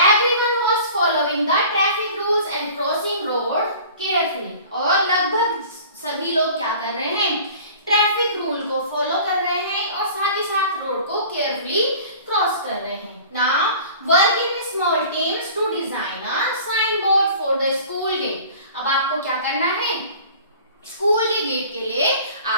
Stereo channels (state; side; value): inverted; both; correlation -0.44